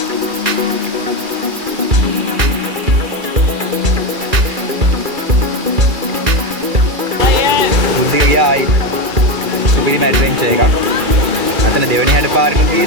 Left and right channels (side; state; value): left; late; 2.4 ms